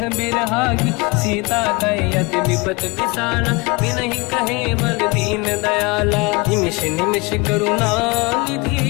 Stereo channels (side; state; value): right; quieter; 27.1 dB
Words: बिरहागी। सीता कहि अति विपत विसाला बिनहि कहे बल दीन दयाला। निमिष निमिष करुणा